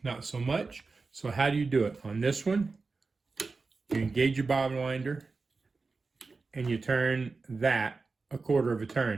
not so much. So how do you do it? On this one, you engage your bobbin winder and you turn that a quarter of a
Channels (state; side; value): quieter; left; 4.1 dB